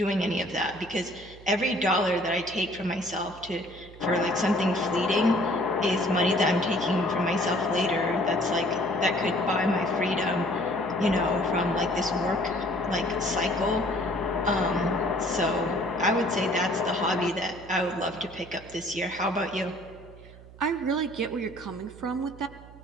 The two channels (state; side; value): noise; right; hum, 19 dB below the sound